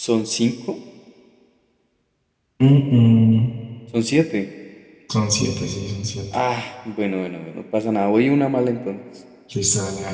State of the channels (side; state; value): both; identical; correlation 1.00